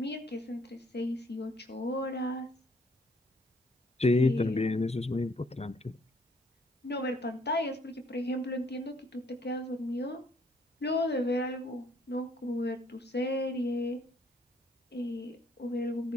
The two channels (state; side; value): normal; both; correlation 0.65